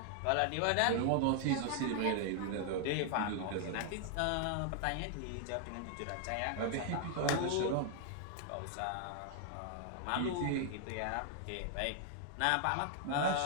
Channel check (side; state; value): both; different; correlation 0.00